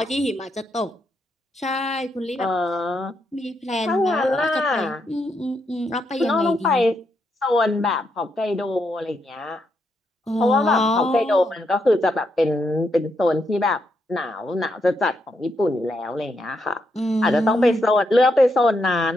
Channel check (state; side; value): normal; both; correlation 0.80